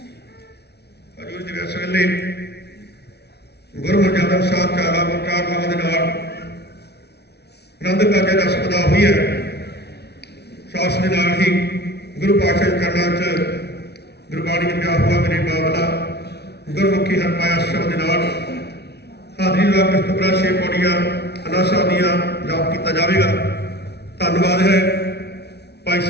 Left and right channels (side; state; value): right; late; 0.49 ms